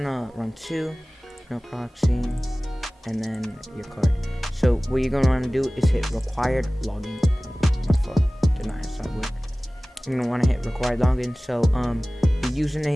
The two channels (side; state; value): both; normal; correlation 0.98